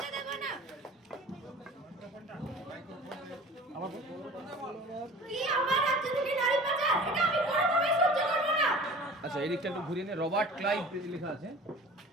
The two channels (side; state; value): both; normal; correlation 0.42